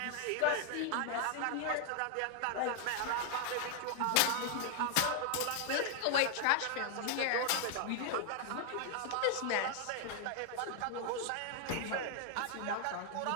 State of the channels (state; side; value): different; both; correlation 0.00